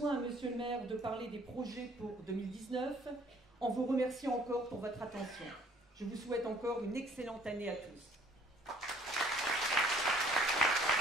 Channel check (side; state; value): both; normal; correlation 0.57